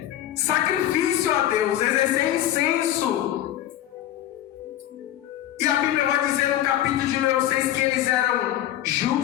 sacrifício a Deus, exercer incenso. E a Bíblia vai dizer no capítulo de número 6 que eles eram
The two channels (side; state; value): right; quieter; 12.6 dB